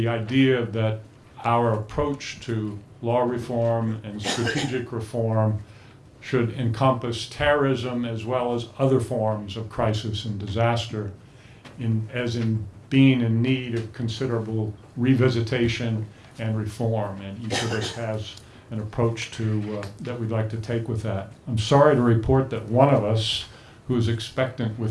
idea that our approach to law reform and strategic reform should encompass terrorism as well as other forms of crisis and disaster, as in being in need of considerable revisitation and reform. And each of us has an approach that we'd like to take with that. I'm sorry to report that one of us, who's expectant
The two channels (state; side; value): identical; both; correlation 1.00